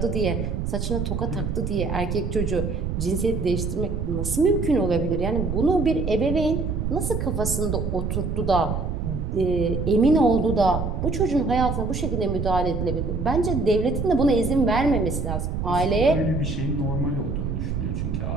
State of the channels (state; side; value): noise; right; rumble, 2 dB below the sound